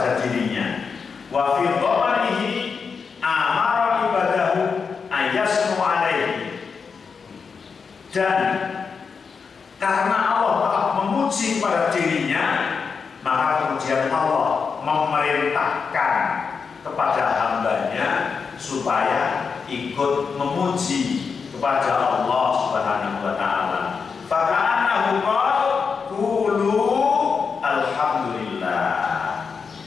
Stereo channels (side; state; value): right; quieter; 5.6 dB